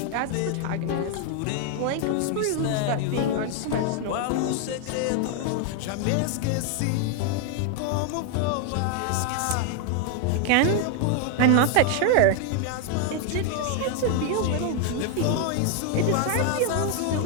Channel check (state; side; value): different; both; correlation 0.00